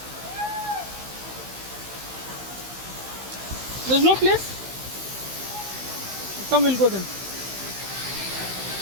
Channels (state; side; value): late; left; 16 ms